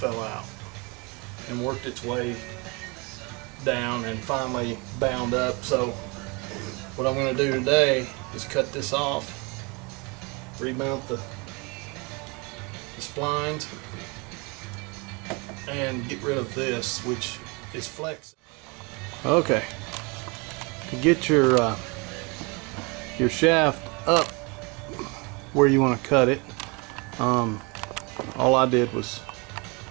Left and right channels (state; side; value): quieter; left; 29.2 dB